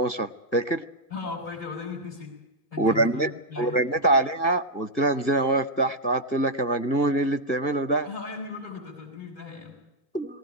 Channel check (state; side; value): late; right; 1.5 ms